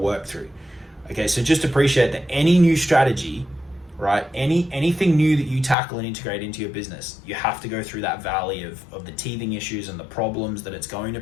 through. Okay, so just appreciate that any new strategy, right? Anything new that you tackle and integrate into your business, you have to go through that valley of the teething issues and the problems that it's going to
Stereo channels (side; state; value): right; drops out; at 5.8 s